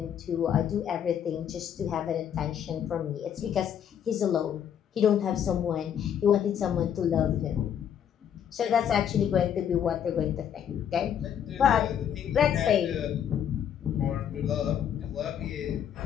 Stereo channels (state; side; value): quieter; right; 9.0 dB